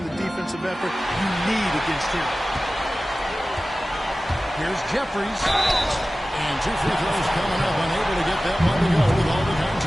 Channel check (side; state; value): both; normal; correlation 0.96